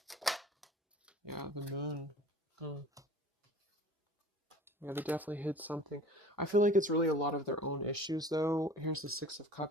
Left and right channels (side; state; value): both; normal; correlation 0.43